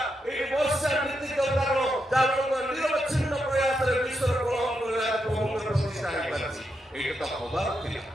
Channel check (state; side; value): normal; both; correlation 0.83